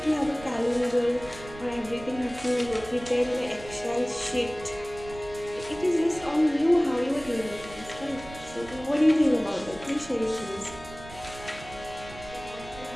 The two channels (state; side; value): noise; right; rumble, 16 dB below the sound